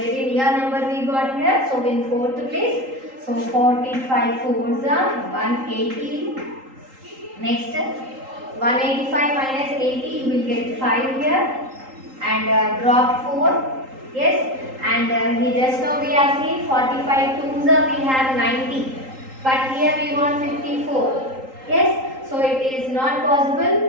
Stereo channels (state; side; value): late; left; 3.8 ms